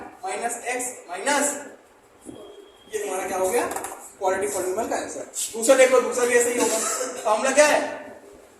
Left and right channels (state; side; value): identical; both; correlation 1.00